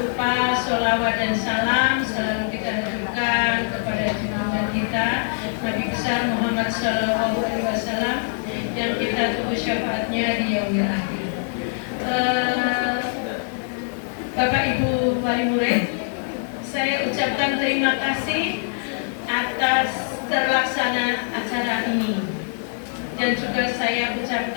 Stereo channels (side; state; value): right; silent; 63 dB below the other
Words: sholawat dan salam selalu kita haturkan kepada junjungan kita Nabi besar Muhammad SAW yang kita tunggu syafaatnya di yaumil akhir. Bapak Ibu wali murid, saya ucapkan terima kasih atas terlaksana acara ini, dan juga saya